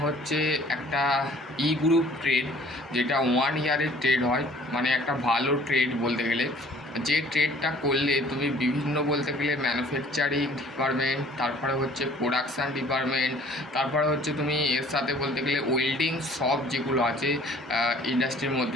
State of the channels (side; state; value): both; normal; correlation 0.53